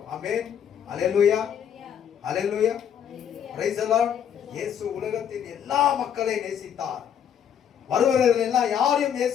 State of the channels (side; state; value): right; quieter; 8.7 dB